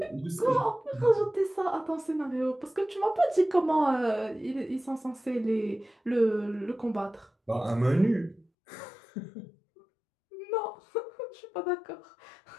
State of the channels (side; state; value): right; drops out; at 8.5 s